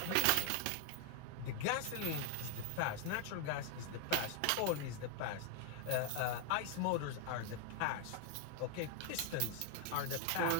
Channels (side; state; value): both; different; correlation 0.00